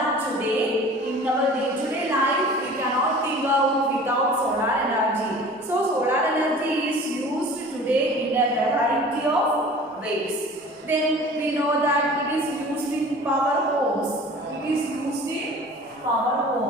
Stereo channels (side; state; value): both; normal; correlation 0.43